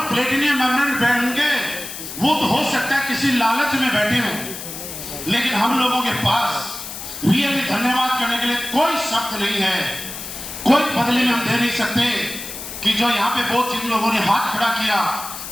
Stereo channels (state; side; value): noise; left; hiss, 9 dB below the sound